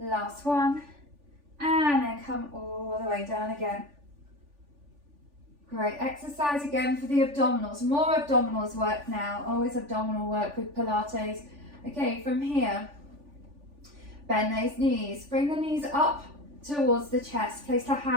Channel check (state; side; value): late; left; 3.4 ms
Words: one. And then come all the way down again. Great. Exercise again for the abdominals. More abdominals work now. Always abdominal work with Pilates. Okay, from here, bend those knees. Bring the knees up towards the chest. Place the